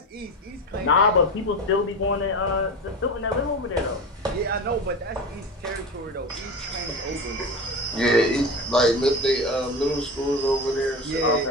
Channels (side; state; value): both; normal; correlation 0.26